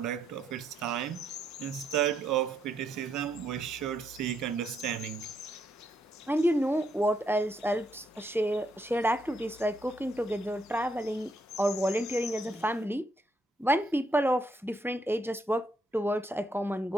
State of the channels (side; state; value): both; normal; correlation 0.76